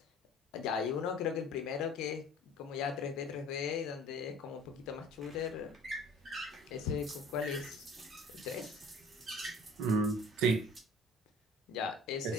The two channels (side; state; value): both; normal; correlation 0.47